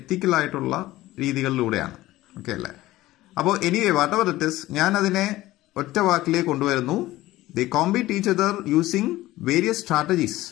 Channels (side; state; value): right; quieter; 16.8 dB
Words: രീതികളിലൂടെയാണ്. ഓക്കെ അല്ലേ? അപ്പോൾ anyway what ever it is, ഞാൻ അതിനെ ഒറ്റ വാക്കിലേക്ക് കൊണ്ടുവരുന്നു. They compete each other using various strategies,